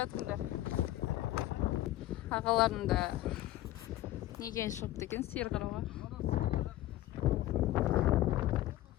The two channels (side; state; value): right; quieter; 15.3 dB